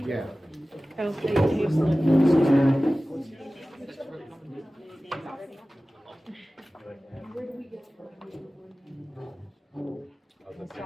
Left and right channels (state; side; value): normal; both; correlation 0.97